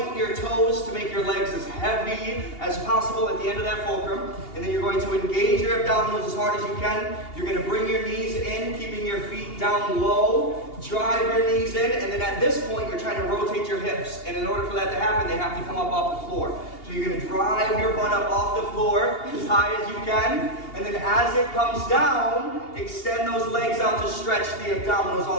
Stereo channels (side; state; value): right; late; 2.8 ms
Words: your toes to make your legs as heavy as possible at the end of that fulcrum. And then you're going to engage your abdominals as hard as you can. You're going to bring your knees in, keeping your feet down low. Drive your knees in. And then at this point, you're trying to rotate your hips. And in order for that to happen, they have to come up off the floor. So you're going to drive your butt up off the floor as high as you can. And then as it comes down, extend those legs out to stretch the abdominals